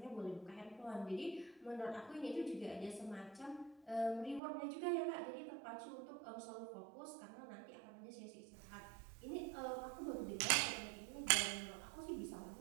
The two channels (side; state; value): left; drops out; at 4.4 s